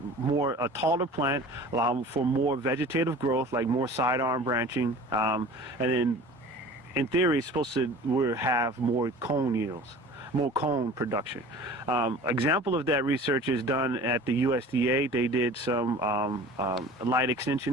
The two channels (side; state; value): both; normal; correlation 0.42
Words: taller plant, allow for more vegetative growth, like more sidearm branching, and then in theory, it's supposed to have more cone yields, more cone production. Example of that research is done at the USDA. They did some light